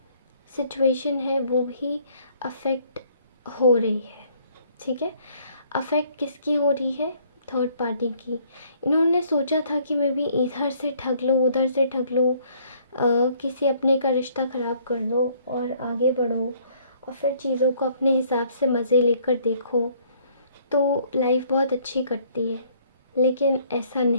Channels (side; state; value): both; inverted; correlation -0.62